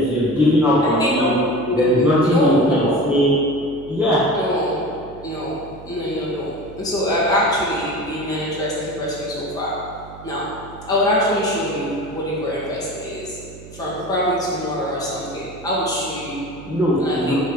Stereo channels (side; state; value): right; noise; hum, 17 dB below the sound